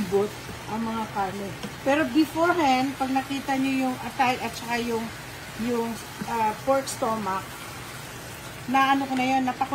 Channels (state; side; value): identical; both; correlation 1.00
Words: ang mga karne. Pero beforehand, pag nakita nyo yung atay at saka yung pork stomach, na ko na yun,